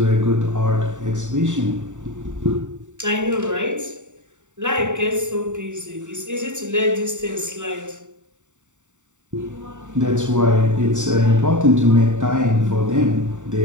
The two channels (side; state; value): left; late; 0.85 ms